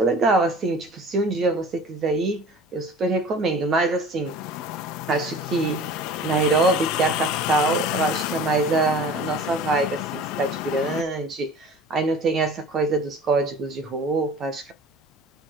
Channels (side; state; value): both; normal; correlation 0.42